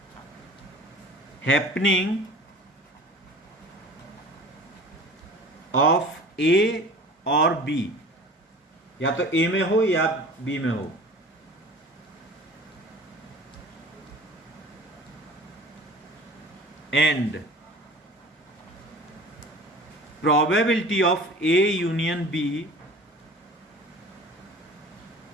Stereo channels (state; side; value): normal; both; correlation 0.41